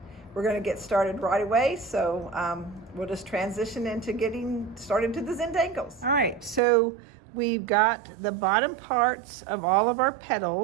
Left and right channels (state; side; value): drops out; left; at 6.6 s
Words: We're going to get started right away, so we'll just transition into getting started to the Zentangles. All right, so we've got the bottom parts of all of our